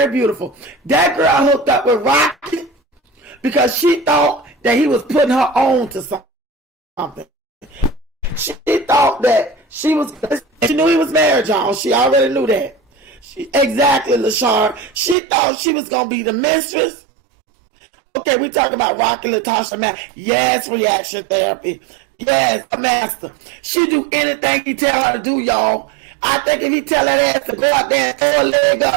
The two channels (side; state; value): left; drops out; at 15.2 s